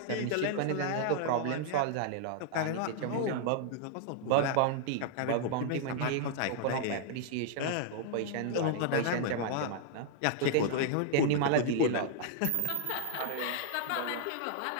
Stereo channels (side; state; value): both; different; correlation -0.01